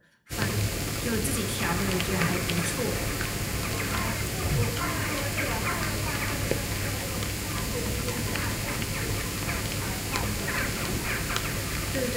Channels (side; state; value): both; identical; correlation 1.00